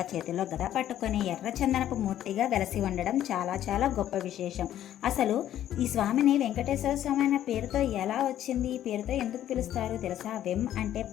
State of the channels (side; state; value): right; quieter; 11.8 dB